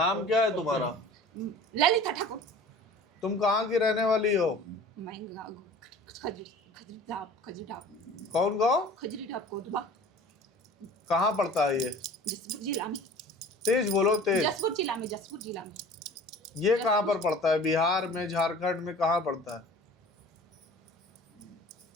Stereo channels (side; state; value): both; normal; correlation 0.43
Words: क्या है तुम्हारा? ललिता ठाकुर। तुम कहाँ की रहने वाली हो? मैं खजूरीडाप कौन गाँव? खजूरीडाप कोटवा, कहाँ पड़ता है ये? जसपुर जिला में। तेज बोलो, तेज। जसपुर जिला में, जसपुर जिला में। ये कहाँ पर पड़ता है? बिहार में, झारखंड में कहाँ पड़ता है?